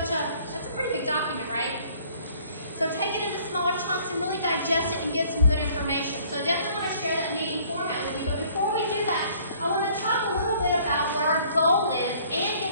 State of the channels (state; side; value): inverted; both; correlation -0.58